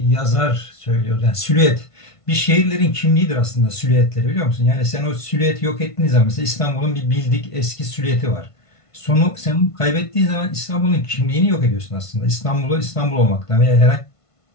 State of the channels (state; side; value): late; right; 1.5 ms